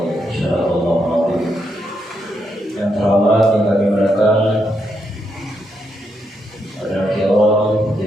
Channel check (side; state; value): both; normal; correlation 0.80